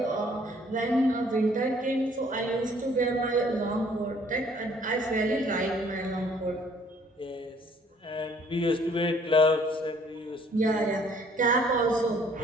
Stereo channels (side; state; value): both; normal; correlation 0.60